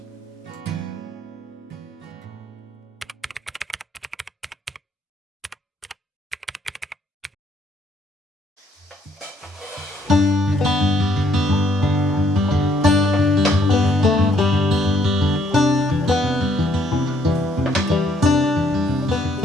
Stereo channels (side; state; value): both; normal; correlation 0.67